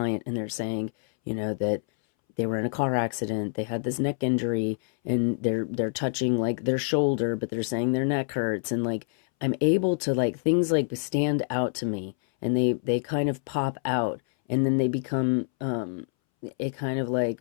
and they're saying, you know, that they were in a car accident, they had this neck injury, and they're touching like their shoulder, but they're saying their neck hurts, and like I'm able to, like, things like stand out to me, and they kind of pop out, and then they become it kind of like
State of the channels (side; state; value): right; silent; 60 dB below the other